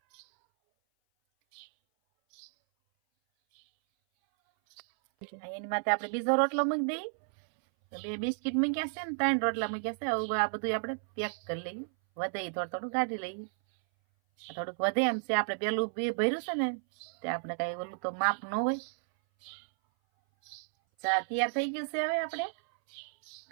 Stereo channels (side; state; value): left; silent; 56 dB below the other